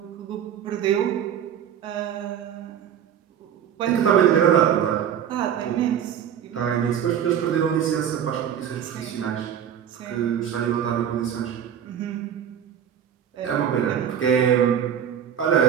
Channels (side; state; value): left; quieter; 9.1 dB